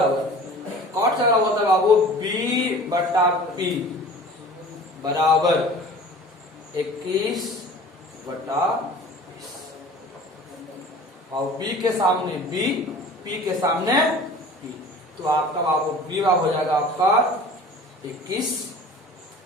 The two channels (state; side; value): normal; both; correlation 0.43